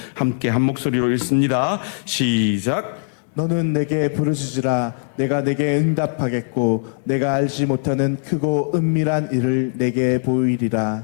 함께 한 목소리로 읽습니다. 시작. 너는 내게 부르짖으라. 내가 내게 응답하겠고 내가 알지 못하는 크고 은밀한 일을 내게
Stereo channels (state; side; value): silent; right; digital silence